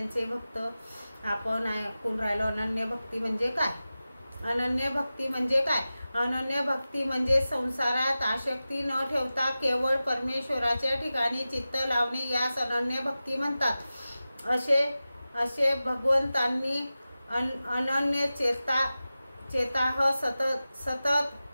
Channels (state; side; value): inverted; both; correlation -0.95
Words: भक्त, आपण ऐकून राहिलो अनन्य भक्ती म्हणजे काय। अनन्य भक्ती म्हणजे काय? अनन्य भक्ती म्हणजे संसारात आसक्ती न ठेवता केवळ परमेश्वराच्या ठिकाणी चित्त लावणे, यास अनन्य भक्ती म्हणतात। असे भगवंतांनी अनन्य चेताह